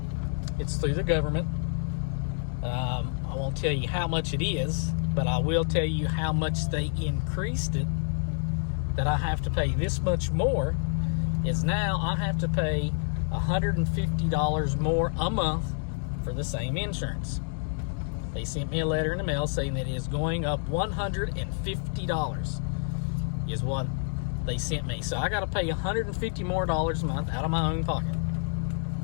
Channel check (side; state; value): right; silent; 59 dB below the other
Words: It's through the government. I won't tell you how much it is, but I will tell you how much they increased it, that I have to pay this much more. Is now I have to pay $150 more a month for the same insurance. They sent me a letter in the mail saying that it is going up $150 is what they sent me. So I got to pay $150 more a month out of my own pocket.